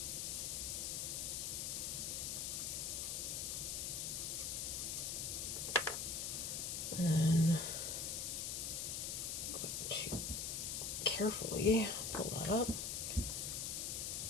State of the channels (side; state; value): left; noise; hiss, 1 dB below the sound